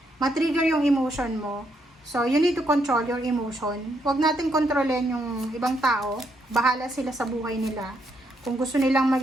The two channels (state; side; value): normal; both; correlation 0.76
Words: matrigger yung emotion mo. So, you need to control your emotion. Huwag natin kontrolin yung ibang tao. Bahala sila sa buhay nila. Kung gusto nilang